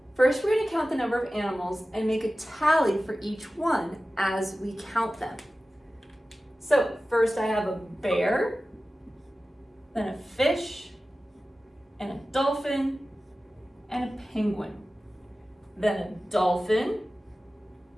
first we're going to count the number of animals and make a tally for each one as we count them. So, first I have a bear, then a fish, and a dolphin, and a penguin. Then a dolphin,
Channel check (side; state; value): both; normal; correlation 0.95